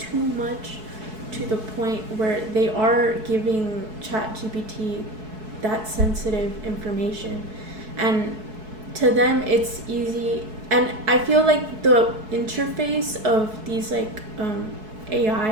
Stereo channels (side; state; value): left; late; 4.6 ms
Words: much to the point where they are giving ChatGPT that sensitive information. And to them it's easy, and I feel like the interface of these like